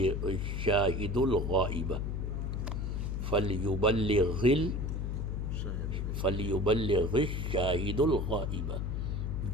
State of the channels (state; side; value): noise; left; hum, 2 dB below the sound